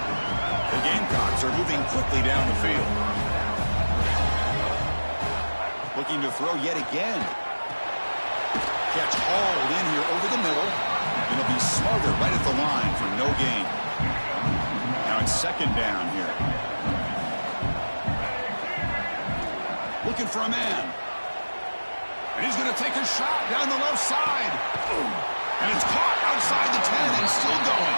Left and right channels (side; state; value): both; inverted; correlation -1.00